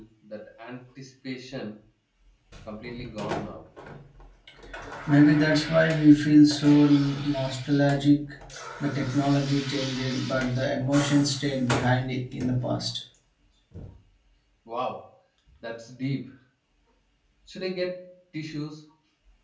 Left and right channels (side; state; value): both; identical; correlation 1.00